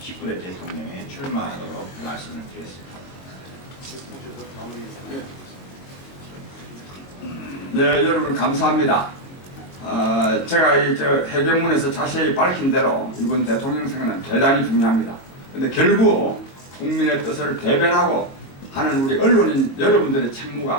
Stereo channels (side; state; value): right; late; 22 ms